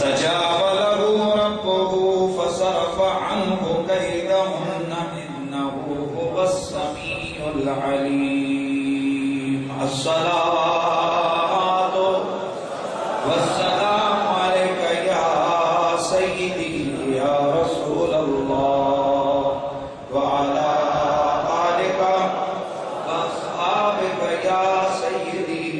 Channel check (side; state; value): both; identical; correlation 1.00